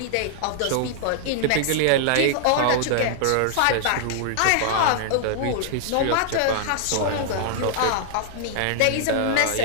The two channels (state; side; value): different; both; correlation -0.01